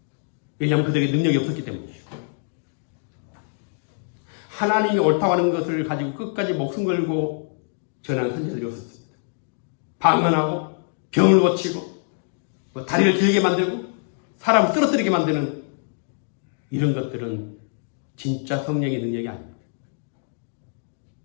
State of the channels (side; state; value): right; silent; 56 dB below the other